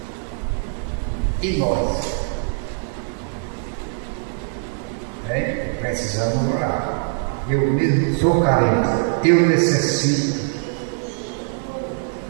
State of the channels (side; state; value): left; silent; 64 dB below the other